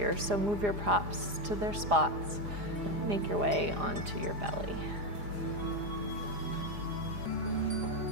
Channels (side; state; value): left; late; 4.9 ms